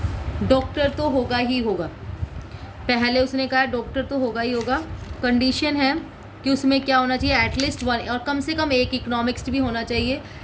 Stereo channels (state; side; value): identical; both; correlation 1.00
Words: डॉक्टर तो होगा ही होगा, पहले उसने कहा डॉक्टर तो होगा ही होगा। कंडीशन है कि उसमें क्या होना चाहिए, एटलीस्ट वन और कम से कम एक इकोनॉमिक्स भी होना चाहिए।